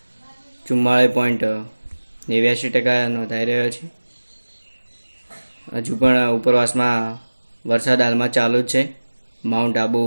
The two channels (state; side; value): inverted; both; correlation -1.00